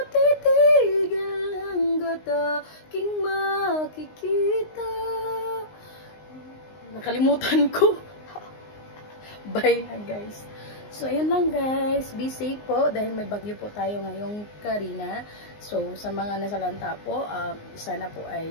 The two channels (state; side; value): late; right; 19 ms